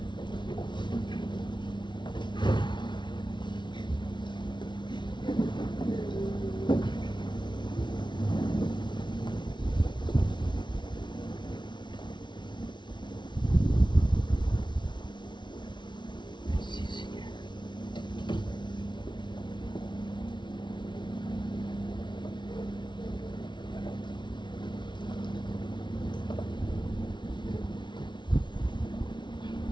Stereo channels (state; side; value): late; right; 0.23 ms